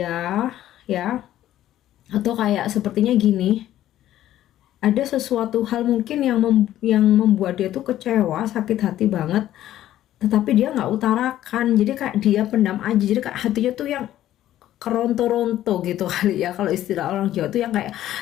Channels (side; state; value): right; quieter; 13.0 dB